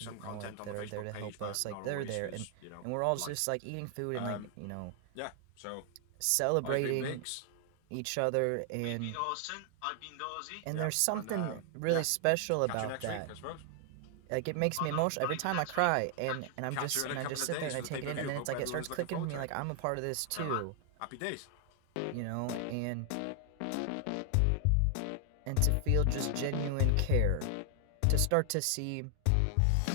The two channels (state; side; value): different; both; correlation 0.00